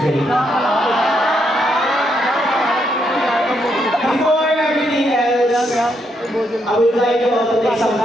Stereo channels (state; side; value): normal; both; correlation 0.77